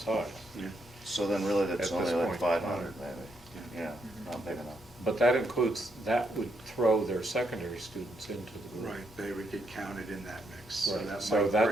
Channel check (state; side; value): normal; both; correlation 0.77